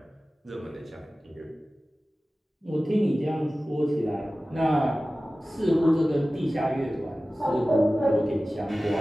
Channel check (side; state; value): both; normal; correlation 0.96